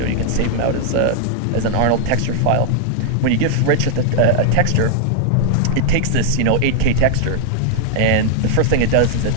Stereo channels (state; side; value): different; both; correlation 0.00